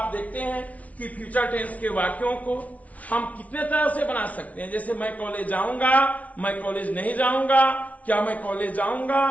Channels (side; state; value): right; late; 0.068 ms